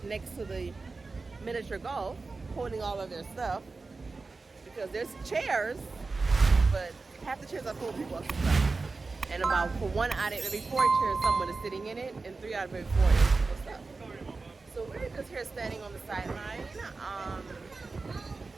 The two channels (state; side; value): quieter; left; 3.9 dB